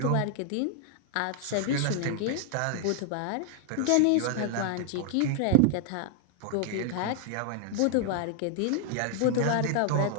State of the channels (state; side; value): different; both; correlation 0.00